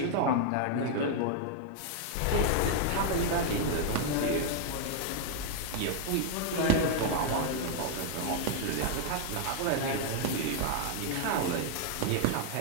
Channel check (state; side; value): different; both; correlation 0.00